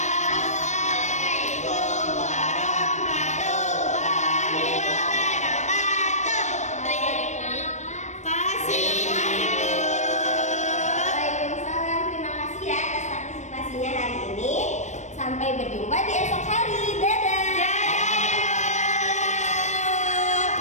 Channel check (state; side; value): late; right; 0.34 ms